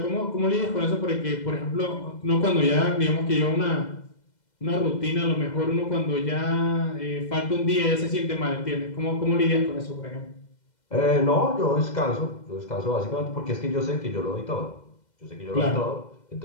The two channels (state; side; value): late; right; 2.0 ms